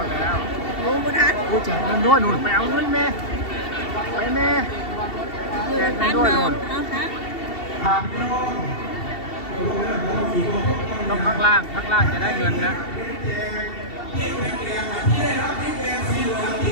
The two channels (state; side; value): late; right; 2.7 ms